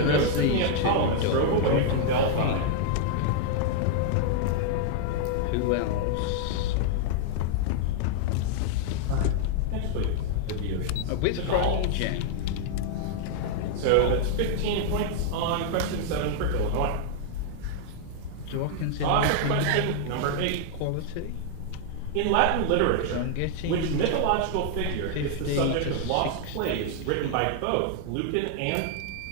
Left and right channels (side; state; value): both; different; correlation -0.01